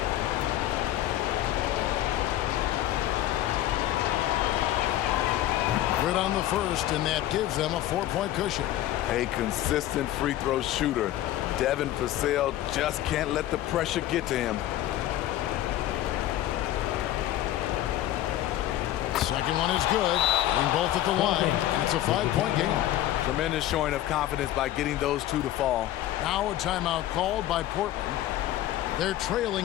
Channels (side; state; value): right; quieter; 13.7 dB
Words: Good on the first, and that gives them a 4-point cushion. A consistent free throw shooter. Devin Vassell just can't let the pressure get to him. Second one is good, getting both at the line, and it's a 5-point game. Tremendous showing of confidence by getting those 2 to fall. Now a timeout called by Portland. They're